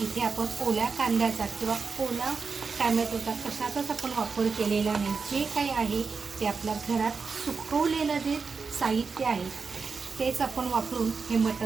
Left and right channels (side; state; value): left; quieter; 5.0 dB